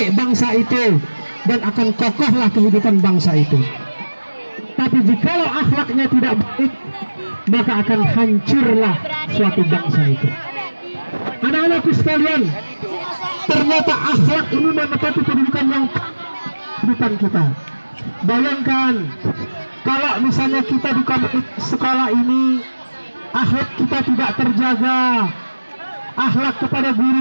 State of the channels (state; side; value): inverted; both; correlation -1.00